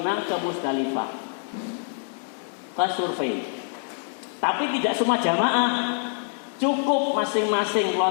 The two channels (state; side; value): silent; right; 61 dB below the other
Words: ke Musdalifah, ke survei. Tapi tidak semua jamaah, cukup masing-masing